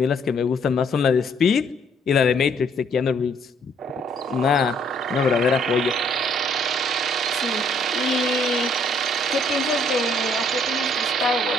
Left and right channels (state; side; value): normal; both; correlation 0.65